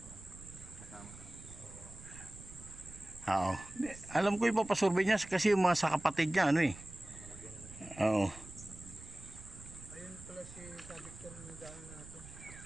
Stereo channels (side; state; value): right; noise; rumble, 16 dB below the sound